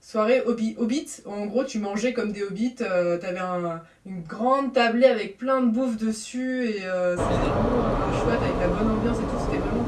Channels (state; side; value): identical; both; correlation 1.00